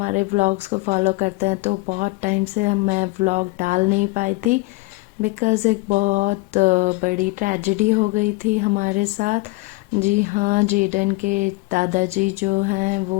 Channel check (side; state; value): right; quieter; 22.9 dB